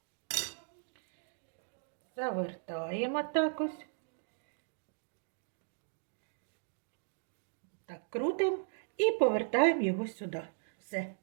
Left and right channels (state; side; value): silent; left; digital silence